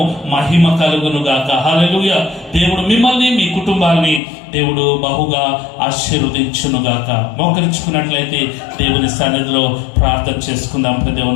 మహిమ కలుగును గాక. హల్లెలూయా. దేవుడు మిమ్మల్ని మీ కుటుంబాన్ని దేవుడు బహుగా ఆశీర్వదించును గాక. మోకరించుకున్నట్లయితే దేవుని సన్నిధిలో ప్రార్థన చేసుకుందాం.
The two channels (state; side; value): drops out; right; at 4.2 s